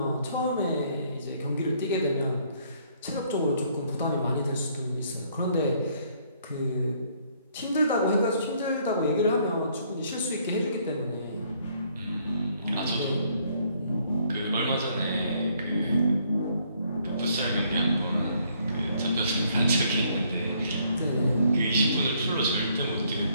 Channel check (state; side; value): inverted; both; correlation -0.67